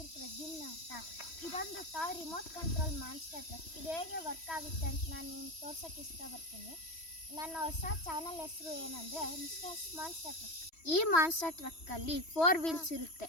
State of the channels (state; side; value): late; right; 3.1 ms